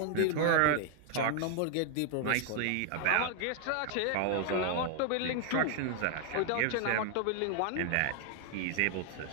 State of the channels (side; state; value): both; different; correlation 0.00